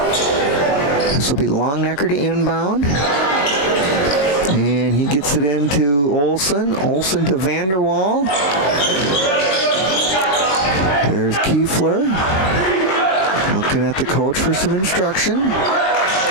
This will be Longnecker to inbound. And he gets it into Olsen. Olsen to Vanderwall. There's Kiefler. Looking at the coach for some instruction.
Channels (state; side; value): late; right; 21 ms